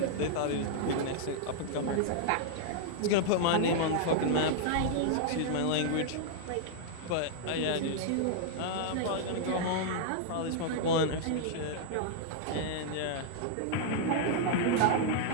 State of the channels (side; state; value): both; different; correlation -0.01